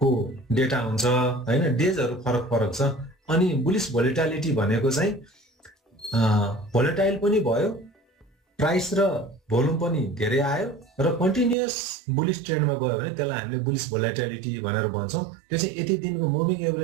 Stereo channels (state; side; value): drops out; left; at 11.6 s